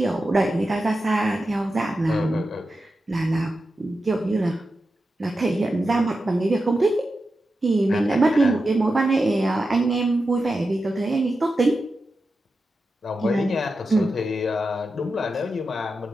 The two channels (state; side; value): normal; both; correlation 0.90